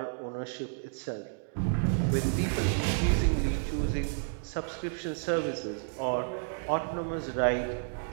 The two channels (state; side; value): silent; left; digital silence